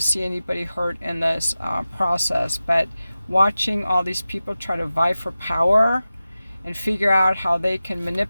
see anybody hurt in this process, but watching all these people try to vie for power and figure out how they can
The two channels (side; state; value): both; inverted; correlation -0.95